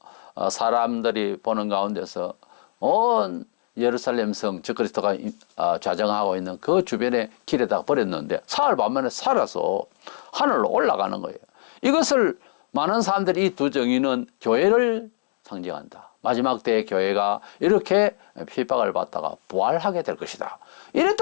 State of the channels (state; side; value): silent; right; digital silence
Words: 사람들이 보는 가운데서 온 예루살렘 성 저 그리스도가 좌정하고 있는 그 주변의 길에다가 버렸는데 사흘 만에 살아서 하늘로 올라가는 거예요. 이것을 많은 사람들이 이 두 정의는 교회를 상징한다. 마지막 때의 교회가 이렇게 핍박을 받다가 부활하게 될 것이다. 이래